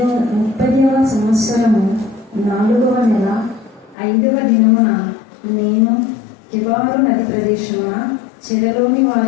30వ సంవత్సరము 4వ నెల 5వ దినమున నేను కెబారు నది ప్రదేశమున చెరలోని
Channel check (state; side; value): drops out; right; at 4.0 s